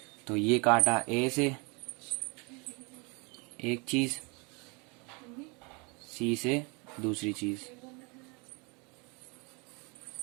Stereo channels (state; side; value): quieter; left; 30.6 dB